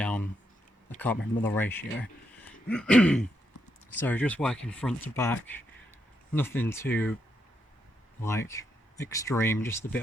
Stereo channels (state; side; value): normal; both; correlation 0.80